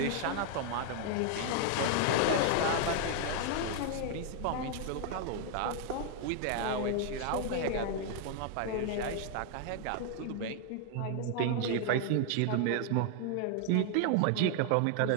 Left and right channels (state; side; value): different; both; correlation 0.00